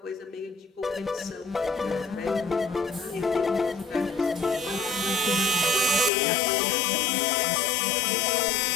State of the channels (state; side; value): drops out; right; at 6.1 s